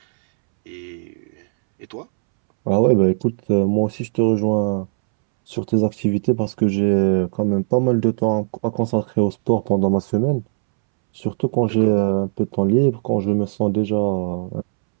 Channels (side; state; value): left; silent; 66 dB below the other